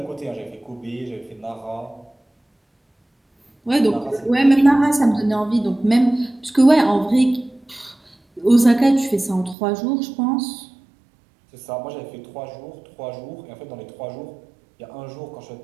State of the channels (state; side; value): drops out; left; at 9.6 s